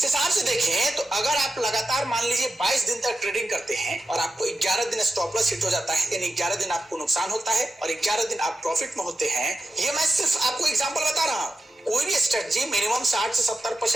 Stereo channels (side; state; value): both; normal; correlation 0.91